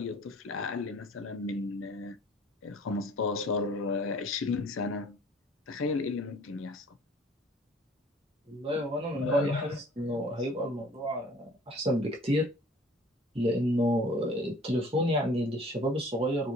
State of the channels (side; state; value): both; normal; correlation 0.51